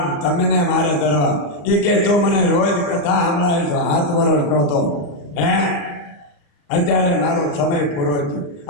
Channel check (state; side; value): late; right; 34 ms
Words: તમને મારે ધરવા. એ કે તો મને રોજ કથા સંભળાવી છો, 7 વર્ષ નહોતો. અત્યારે મારો સમય પૂરો થયો.